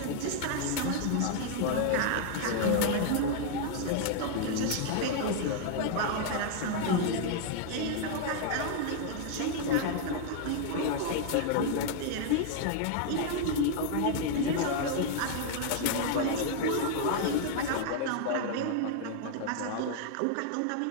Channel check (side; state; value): both; different; correlation 0.00